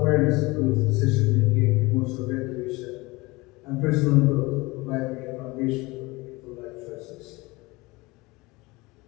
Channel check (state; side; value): quieter; right; 22.9 dB